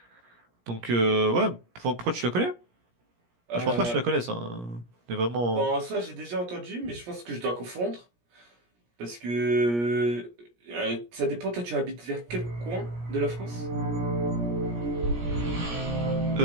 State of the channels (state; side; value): late; left; 17 ms